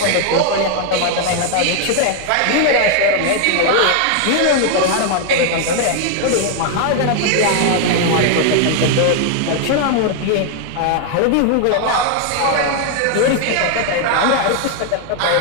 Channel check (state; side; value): different; both; correlation 0.00